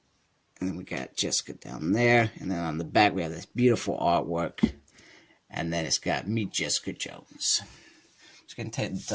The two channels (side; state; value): both; identical; correlation 1.00